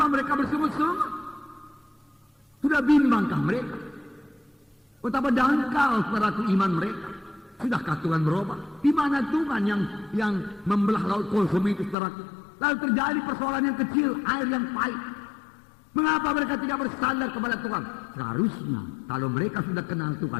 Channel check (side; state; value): right; drops out; at 12.0 s